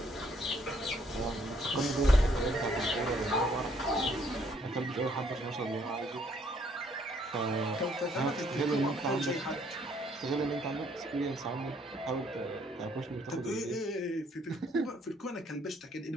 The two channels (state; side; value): normal; both; correlation 0.66